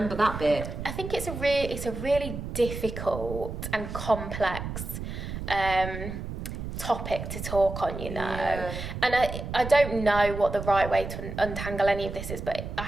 that bit. I think it's a really difficult and complex topic to talk on, you know. Yeah. And I don't know what the right way to untangle any of this is, but I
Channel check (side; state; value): right; noise; rumble, 7 dB below the sound